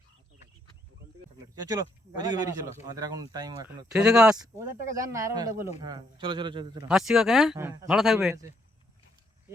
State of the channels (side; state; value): both; normal; correlation 0.73